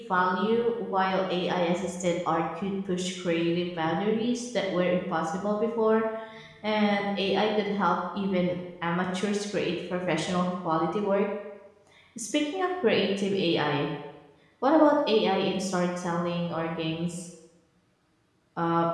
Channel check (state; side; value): identical; both; correlation 1.00